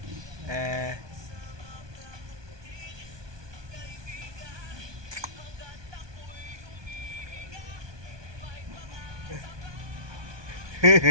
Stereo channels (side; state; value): left; late; 1.2 ms